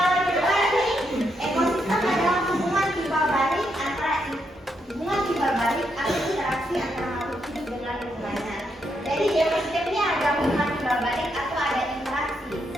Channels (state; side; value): normal; both; correlation 0.79